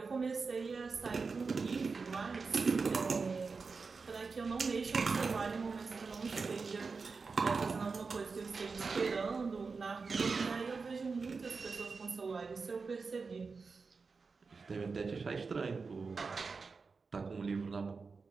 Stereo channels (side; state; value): left; quieter; 4.6 dB